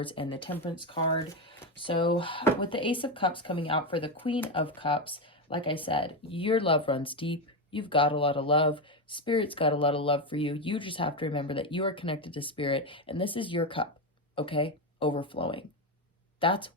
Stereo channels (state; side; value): normal; both; correlation 0.11